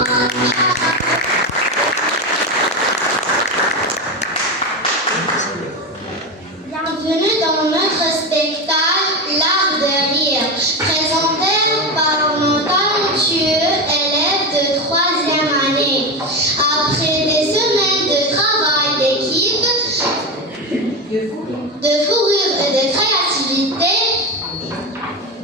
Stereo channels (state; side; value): normal; both; correlation 0.17